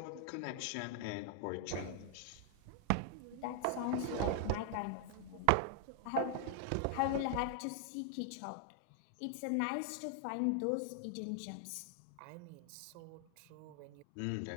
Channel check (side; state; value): both; different; correlation 0.00